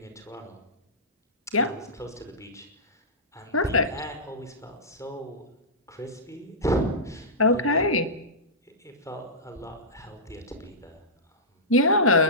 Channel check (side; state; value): both; normal; correlation -0.17